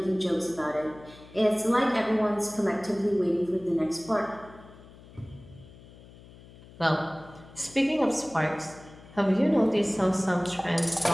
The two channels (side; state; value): left; noise; hum, 21 dB below the sound